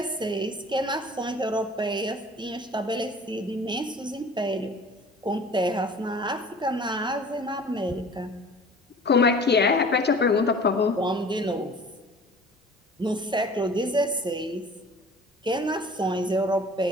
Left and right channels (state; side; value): normal; both; correlation 0.46